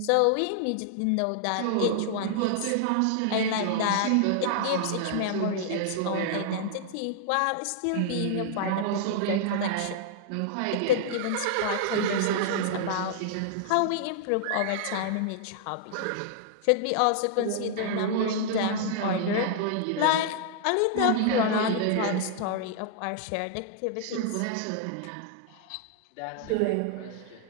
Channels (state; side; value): different; both; correlation -0.01